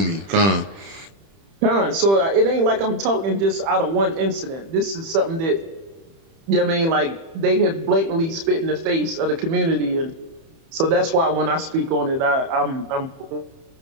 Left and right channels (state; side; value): late; left; 30 ms